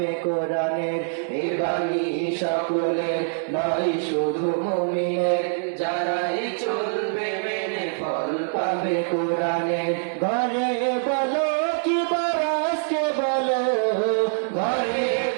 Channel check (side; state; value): left; silent; 62 dB below the other